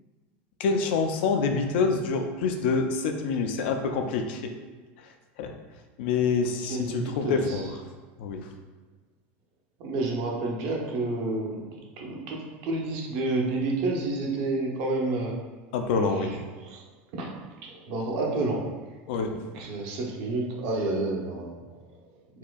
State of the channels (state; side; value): normal; both; correlation 0.13